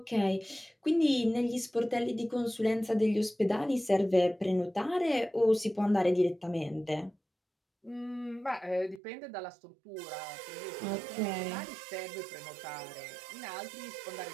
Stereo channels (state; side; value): drops out; left; at 9.0 s